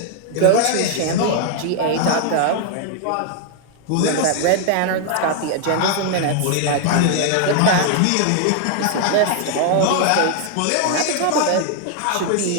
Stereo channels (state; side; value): different; both; correlation 0.00